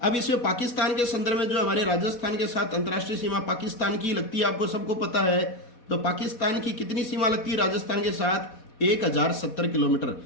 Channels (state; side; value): late; right; 4.1 ms